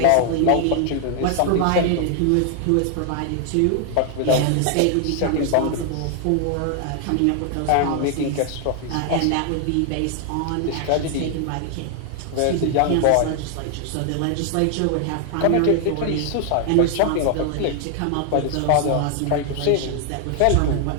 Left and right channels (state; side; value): different; both; correlation 0.00